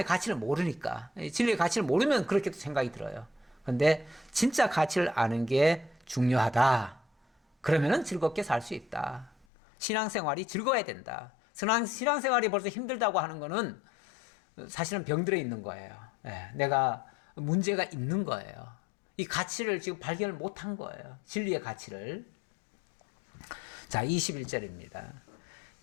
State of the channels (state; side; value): drops out; right; at 9.5 s